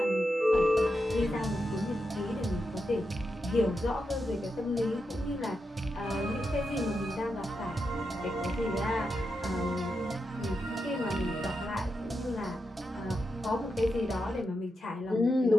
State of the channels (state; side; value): normal; both; correlation 0.87